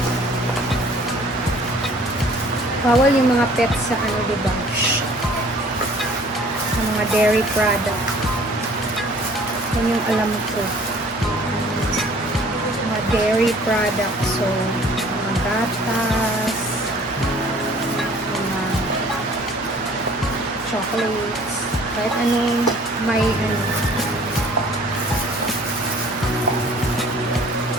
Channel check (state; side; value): normal; both; correlation 0.53